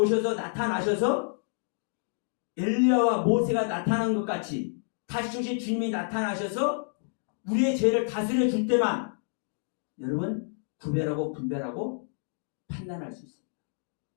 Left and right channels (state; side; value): silent; right; digital silence